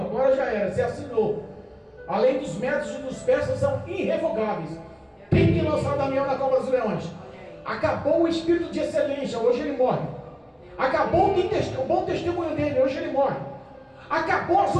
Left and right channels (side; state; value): both; identical; correlation 1.00